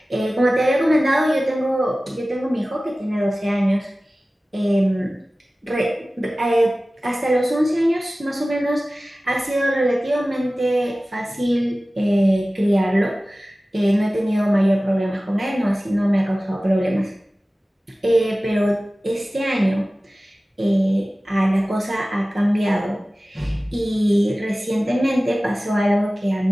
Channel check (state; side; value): normal; both; correlation 0.97